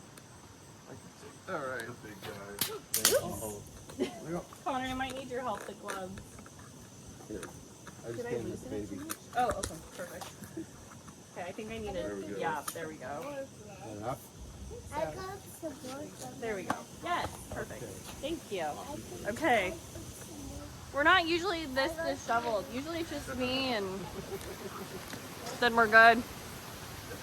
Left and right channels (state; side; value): identical; both; correlation 1.00